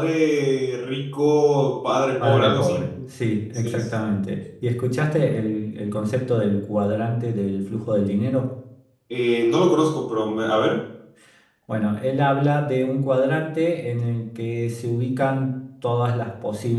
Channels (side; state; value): both; identical; correlation 1.00